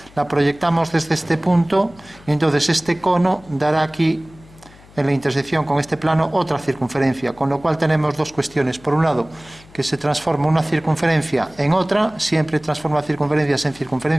la proyectamos desde este punto y entonces este cono dará aquí en la intersección con este plano otra circunferencia, con lo cual tenemos dos cuestiones. Por un lado, que se transforma una circunferencia en otra, siempre transforma circunferencias en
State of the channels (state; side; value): noise; left; hum, 24 dB below the sound